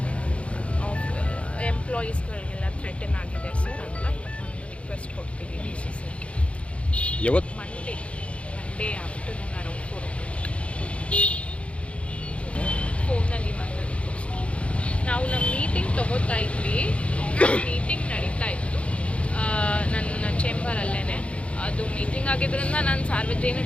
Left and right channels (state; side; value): late; right; 0.062 ms